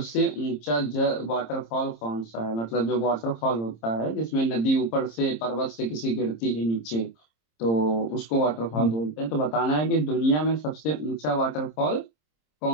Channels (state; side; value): late; right; 26 ms